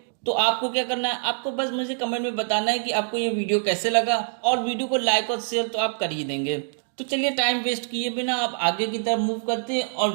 तो आपको क्या करना है, आपको बस मुझे कमेंट में बताना है कि आपको ये वीडियो कैसे लगा और वीडियो को लाइक और शेयर तो आप कर ही देंगे। तो चलिए टाइम वेस्ट किए बिना आप आगे की तरफ मूव करते हैं और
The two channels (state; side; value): silent; left; 62 dB below the other